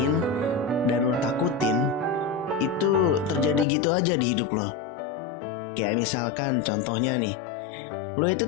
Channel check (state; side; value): drops out; right; at 3.7 s